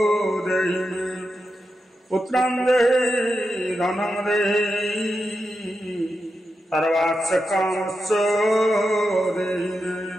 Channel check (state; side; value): normal; both; correlation 0.88